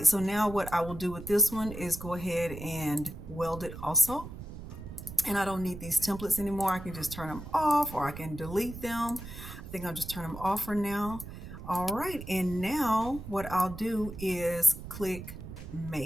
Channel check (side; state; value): right; noise; rumble, 11 dB below the sound